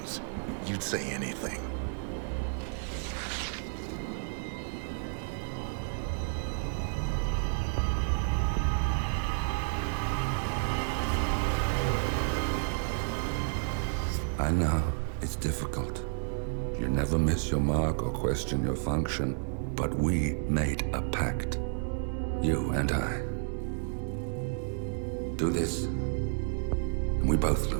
You'd say anything. I know, it's difficult. You never miss your mark or question your function, but we made a pact. You and I. Do this, and we both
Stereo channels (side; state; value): left; silent; digital silence